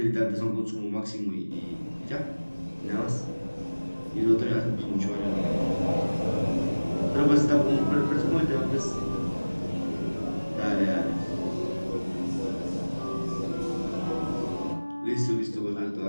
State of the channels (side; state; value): both; inverted; correlation -1.00